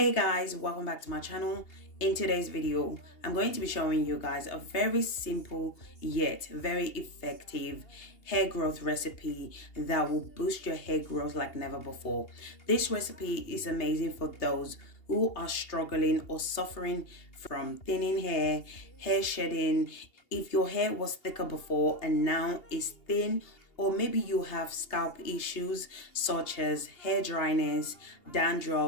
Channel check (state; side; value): late; right; 2.8 ms